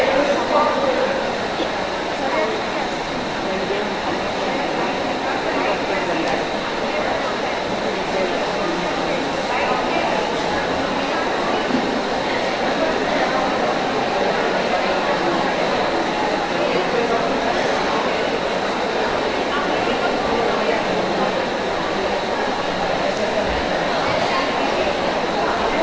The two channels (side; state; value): both; identical; correlation 1.00